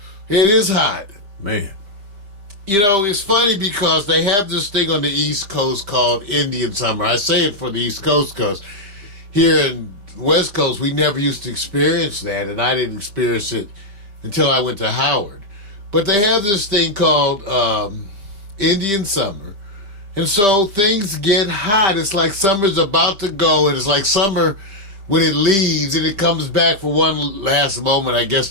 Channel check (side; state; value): left; late; 5.0 ms